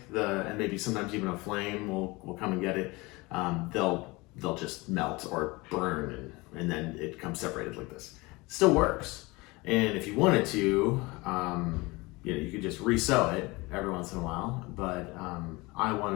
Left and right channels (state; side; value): quieter; right; 23.6 dB